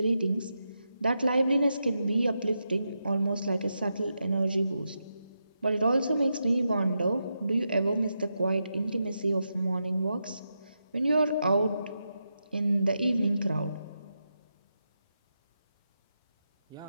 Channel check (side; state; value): both; inverted; correlation -0.86